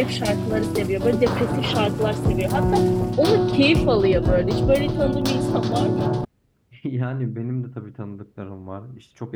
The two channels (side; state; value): both; identical; correlation 1.00